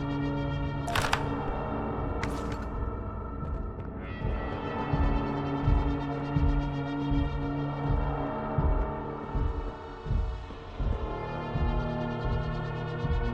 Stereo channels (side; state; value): both; identical; correlation 1.00